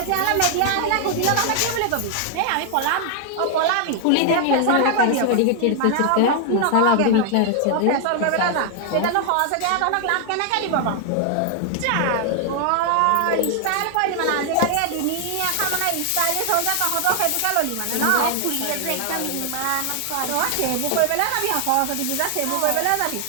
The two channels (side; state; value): both; different; correlation 0.00